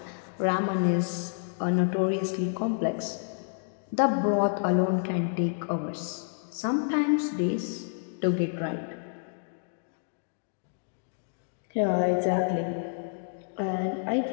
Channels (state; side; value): silent; right; digital silence